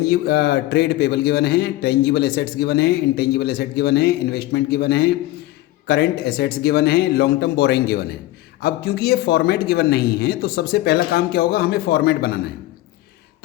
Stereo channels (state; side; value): quieter; right; 16.6 dB